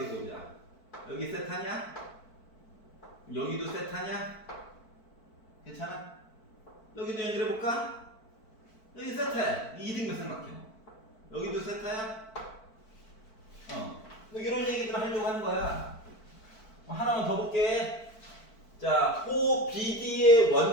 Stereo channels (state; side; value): late; right; 4.5 ms